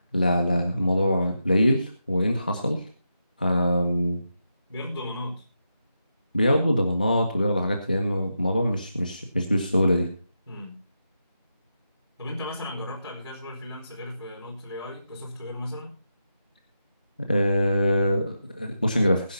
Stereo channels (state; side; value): inverted; both; correlation -0.86